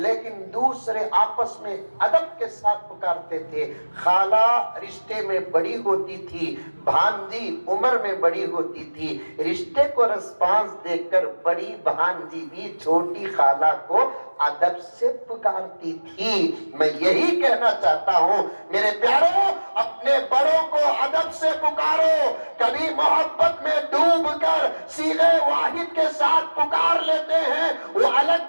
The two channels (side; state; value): both; inverted; correlation -1.00